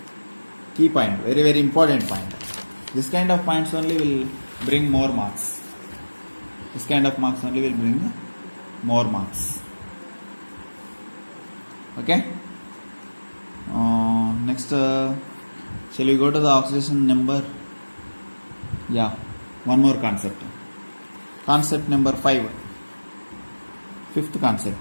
Key point, very very important point. This kind of points only will bring more marks. This kind of marks only will bring more marks. Okay. Next, shall we go to the oxidation number? Yeah, one more concept. Concept number 5. Fifth concept.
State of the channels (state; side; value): inverted; both; correlation -1.00